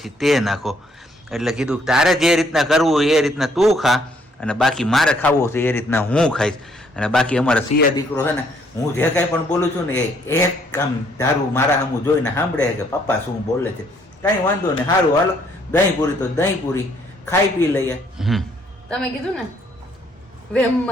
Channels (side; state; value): both; normal; correlation 0.67